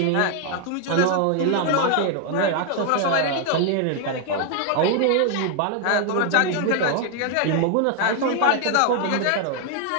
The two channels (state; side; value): different; both; correlation 0.00